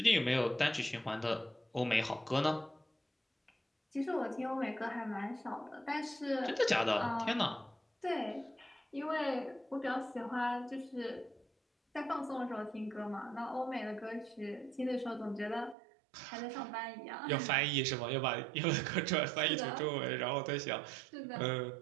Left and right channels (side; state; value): left; drops out; at 15.8 s